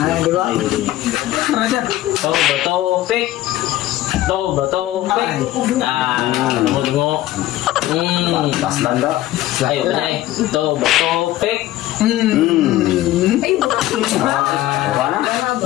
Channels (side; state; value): right; quieter; 15.1 dB